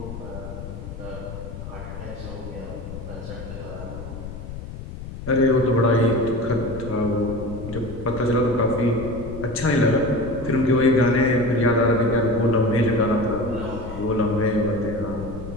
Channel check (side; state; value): left; noise; rumble, 10 dB below the sound